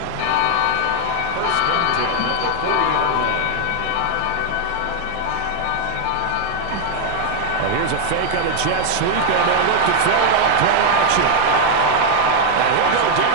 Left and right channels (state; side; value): different; both; correlation 0.00